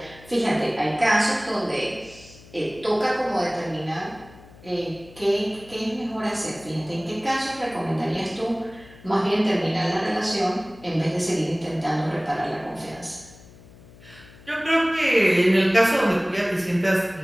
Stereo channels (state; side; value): noise; left; hum, 22 dB below the sound